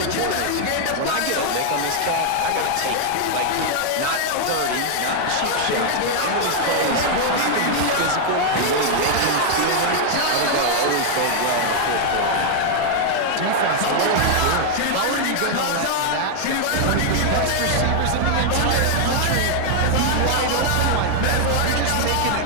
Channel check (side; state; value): both; different; correlation 0.00